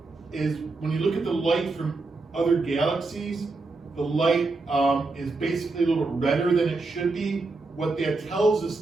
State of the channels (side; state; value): left; quieter; 3.6 dB